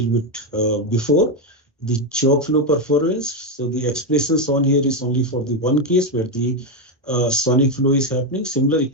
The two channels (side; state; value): both; normal; correlation 0.07